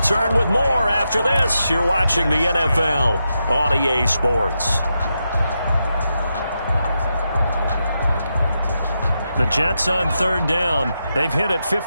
with more after this. You're watching the NFL on EA Sports. The Jets on third down. They've hit it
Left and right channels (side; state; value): both; inverted; correlation -0.86